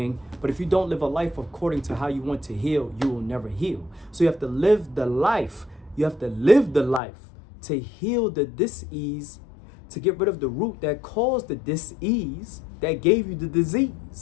But if you don't live a life according to how you want to heal, you will never heal. So you have to live the life. You have to live the life to heal the dis-ease, to get rid of the root that caused the dis-ease that gave you the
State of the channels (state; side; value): drops out; right; at 7.0 s